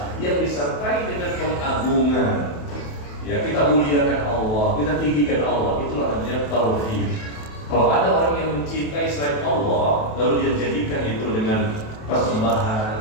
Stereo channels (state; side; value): late; right; 28 ms